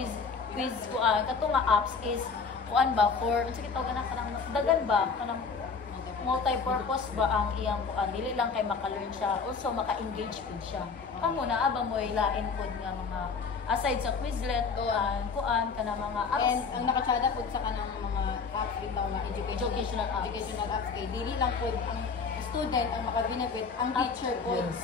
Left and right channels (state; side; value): quieter; right; 5.2 dB